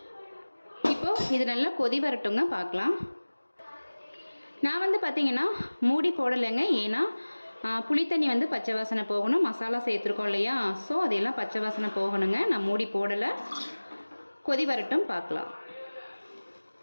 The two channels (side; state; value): both; inverted; correlation -1.00